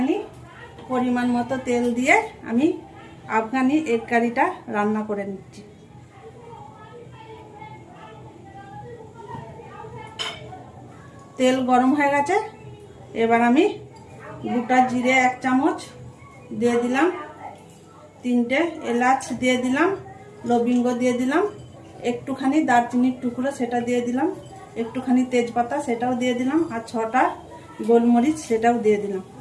পরিমাণ মতো তেল দিয়ে আমি আফগানি এগ কারিটা রান্না করে নিচ্ছি। তেল গরম হয়ে গেছে, এবার আমি গোটা জিরে 1 চামচ দিয়ে দিলাম, 3টে এলাচ দিয়ে দিলাম, লবঙ্গ দিয়ে দিলাম, একটুখানি দারচিনির টুকরো সেটা দিয়ে দিলাম, একটুখানি তেজপাতা সেটাও দিয়ে দিলাম, আর 6টা গোলমরিচ সেটাও দিয়ে দিলাম।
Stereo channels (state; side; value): identical; both; correlation 1.00